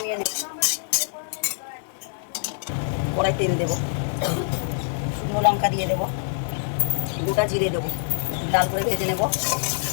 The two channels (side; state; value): right; silent; digital silence